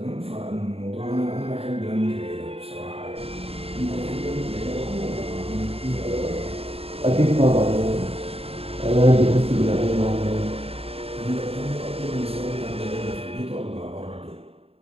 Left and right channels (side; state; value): left; late; 0.28 ms